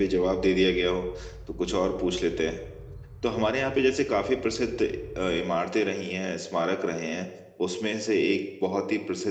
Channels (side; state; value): both; identical; correlation 1.00